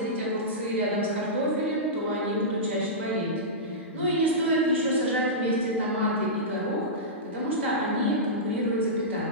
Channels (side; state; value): both; normal; correlation -0.16